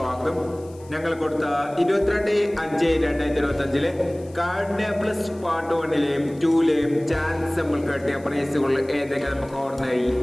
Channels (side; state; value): left; noise; hiss, 27 dB below the sound